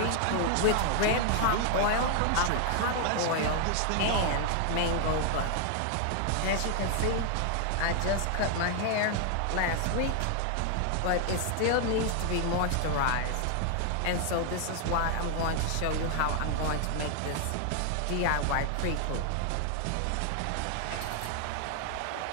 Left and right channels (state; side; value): different; both; correlation 0.00